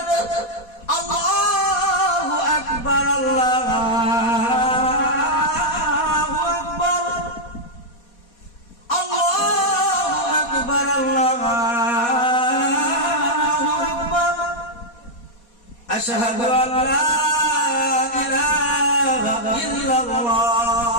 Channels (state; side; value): late; right; 4.2 ms